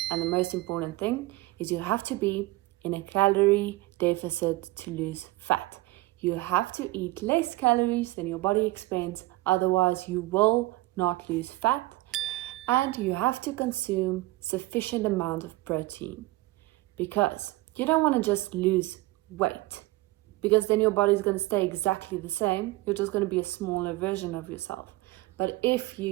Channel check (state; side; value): quieter; left; 19.3 dB